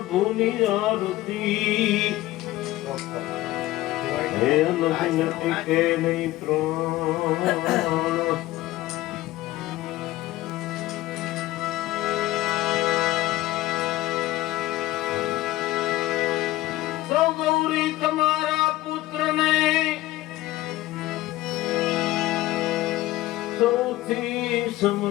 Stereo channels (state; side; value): quieter; right; 16.9 dB